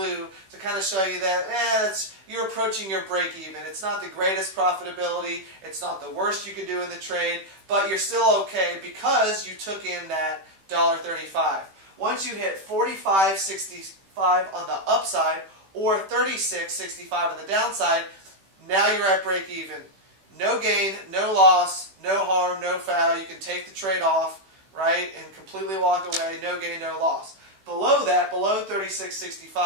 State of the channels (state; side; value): late; left; 16 ms